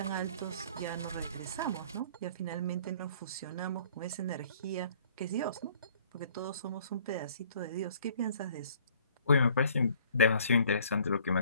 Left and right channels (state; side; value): inverted; both; correlation -0.56